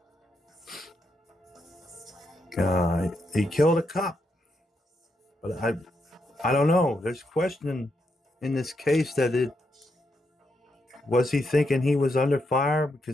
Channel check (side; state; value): both; normal; correlation 0.81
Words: He killed a cop, but I don't know. There's question in this case that was he thinking he was under fire